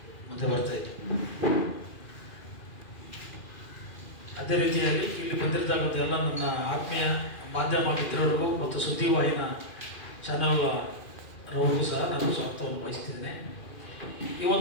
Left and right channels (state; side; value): late; right; 2.4 ms